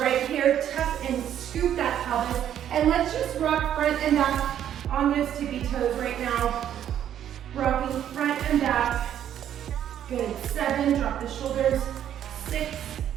right here, tuck and scoop that pelvis. And let's just rock front and back on those tippy toes right now. Rocking front and back. Good, 7, drop the shoulders. 6,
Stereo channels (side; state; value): left; quieter; 10.3 dB